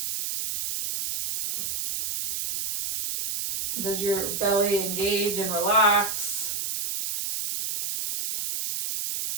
Does your belly engage and relax?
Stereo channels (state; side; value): noise; right; hiss, 3 dB below the sound